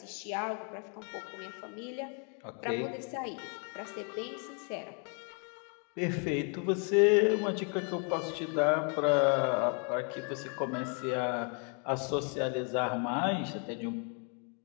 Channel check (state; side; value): quieter; right; 38.4 dB